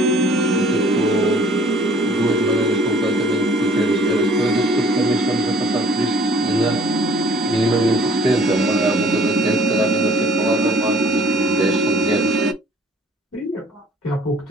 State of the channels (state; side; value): normal; both; correlation 0.56